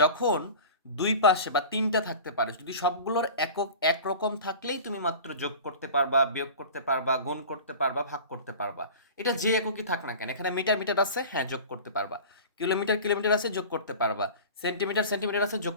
দুই পাশে বা তিনটা থাকতে পারে, যদি সবগুলোর একক একরকম থাকলেই তুমি মাত্র যোগ করতে পারবা, বিয়োগ করতে পারবা, গুণ করতে পারবা, ভাগ করতে পারবা। এটা যে এককই থাক না কেন, এখানে মিটার মিটার আছে, হ্যাঁ যোগ করতে পারবা। কিলোমিটার কিলোমিটার আছে, যোগ করতে পারবা। সেন্টিমিটার সেন্টিমিটার আছে, যোগ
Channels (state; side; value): inverted; both; correlation -0.36